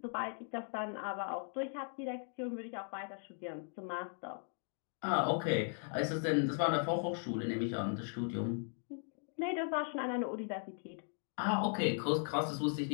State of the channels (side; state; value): right; silent; 52 dB below the other